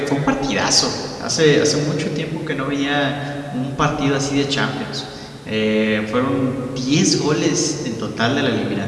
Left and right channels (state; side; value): identical; both; correlation 1.00